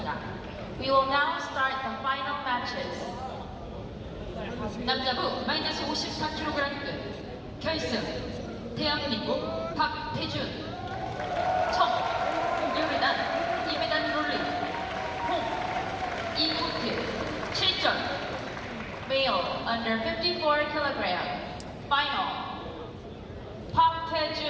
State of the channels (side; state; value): both; identical; correlation 1.00